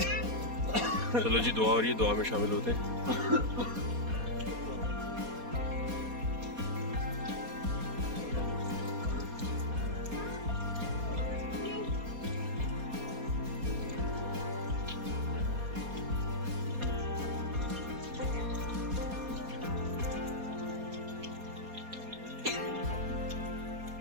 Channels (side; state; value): left; late; 4.2 ms